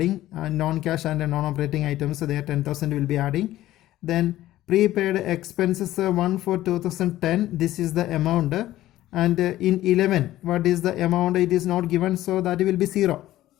Non-cash and non-operating items, so there 10,000 will be adding. Then prepaid expenses 1 for 2010, this is the amount, and in 11 what is the amount, it is not given, so that will be 0,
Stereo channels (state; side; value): quieter; right; 14.8 dB